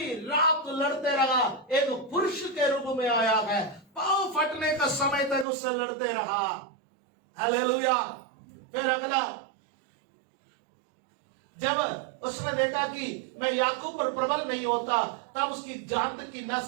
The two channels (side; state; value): left; drops out; at 5.5 s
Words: रात लड़ते रहा। एक पुरुष के रूप में आया है, पांव फटने का समय तक उससे लड़ते रहा। हालेलुया। फिर अगला जब उसने देखा कि मैं याकूब पर प्रबल नहीं होता, तब उसकी जांद की नस